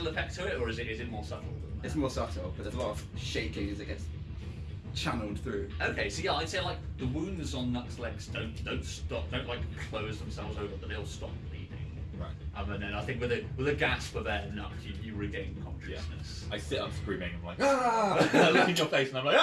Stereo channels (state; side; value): identical; both; correlation 1.00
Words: effect to it, or is it more subtle than that? It's more subtle, but there's a lot of shaking as it gets channeled through. Okay. So yeah, I'd say like the wounds on Nuck's legs don't like close themselves over, but they'll stop bleeding. Right. And then I think with a gasp of air, Nuck, you regain consciousness. I sit up screaming. I'm like, ah! I look in your face and I'm like,